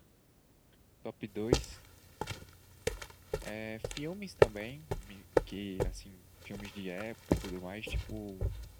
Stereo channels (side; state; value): both; identical; correlation 1.00